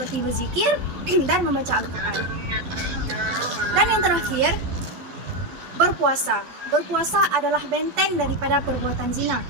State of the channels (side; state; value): left; late; 12 ms